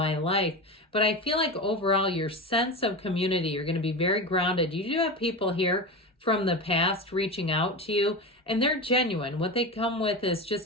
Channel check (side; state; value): both; normal; correlation 0.24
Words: life. But I feel like overall, your sense of community, you're going to be very grounded. You do have people here from the past reaching out to you, and they're genuine. What they come with is